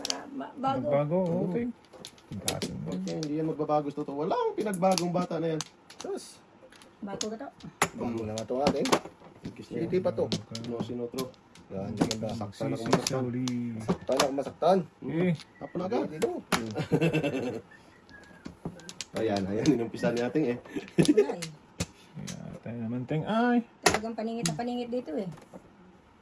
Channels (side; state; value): both; identical; correlation 1.00